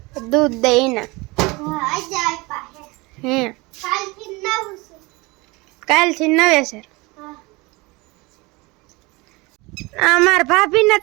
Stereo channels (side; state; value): left; quieter; 24.4 dB